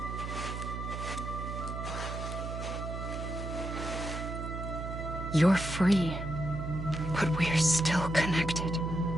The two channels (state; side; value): noise; right; hum, 6 dB below the sound